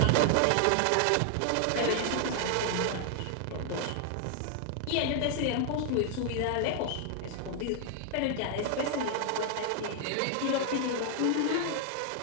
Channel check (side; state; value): both; different; correlation 0.00